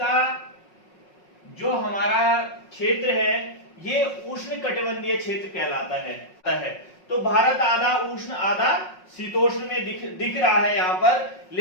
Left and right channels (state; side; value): late; right; 5.5 ms